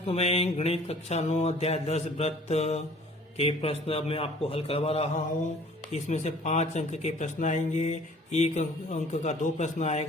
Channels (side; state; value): both; normal; correlation 0.52